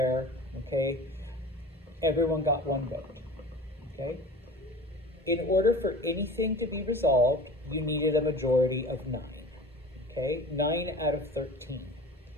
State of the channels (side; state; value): both; normal; correlation 0.39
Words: okay? Everyone got one vote, okay? In order for anything to be resolved, you needed a majority of 9, okay? 9 out of 13